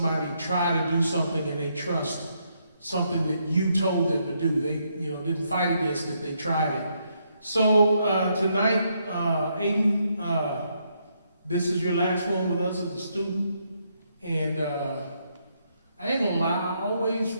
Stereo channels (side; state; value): both; inverted; correlation -0.76